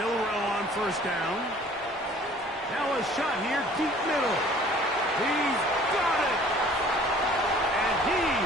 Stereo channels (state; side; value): normal; both; correlation 0.51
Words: on first down. Now a shot here, deep middle. He's got it! And he